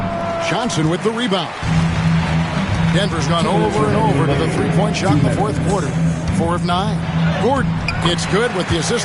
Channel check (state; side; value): identical; both; correlation 1.00